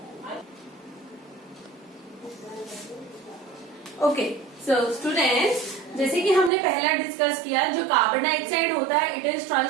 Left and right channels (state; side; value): drops out; left; at 6.5 s